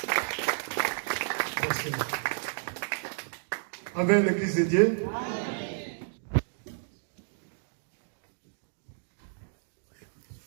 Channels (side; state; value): left; silent; digital silence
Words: Avec l'Église de Dieu.